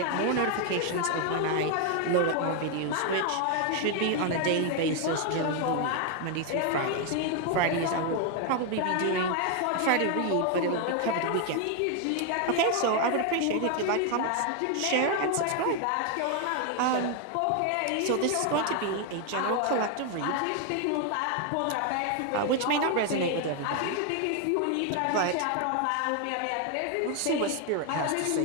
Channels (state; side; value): different; both; correlation 0.01